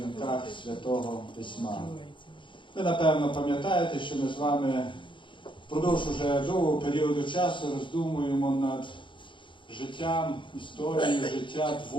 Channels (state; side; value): late; right; 0.24 ms